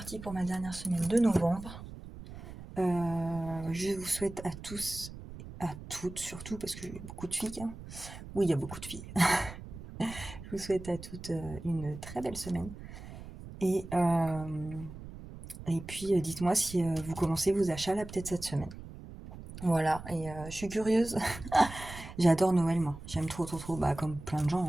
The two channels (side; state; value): right; noise; rumble, 13 dB below the sound